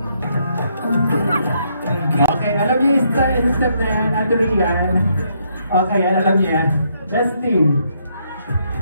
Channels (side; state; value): both; inverted; correlation -0.73